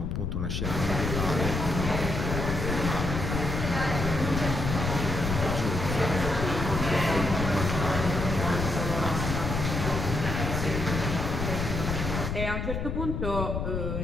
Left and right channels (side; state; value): left; noise; rumble, 2 dB below the sound